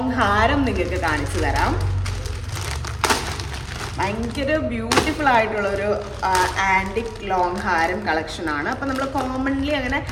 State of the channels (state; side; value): identical; both; correlation 1.00